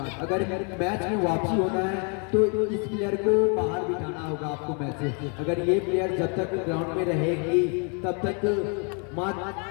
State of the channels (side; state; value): right; quieter; 37.6 dB